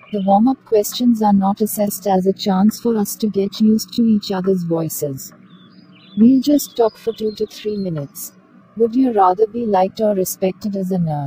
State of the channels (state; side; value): identical; both; correlation 1.00